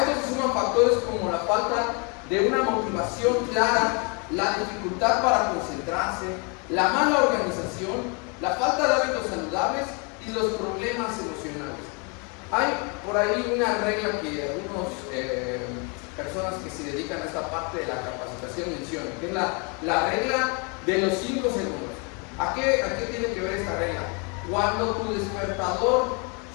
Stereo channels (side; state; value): right; quieter; 33.5 dB